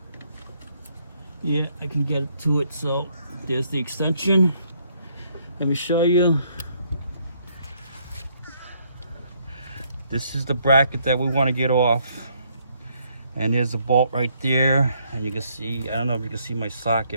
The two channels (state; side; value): inverted; both; correlation -0.70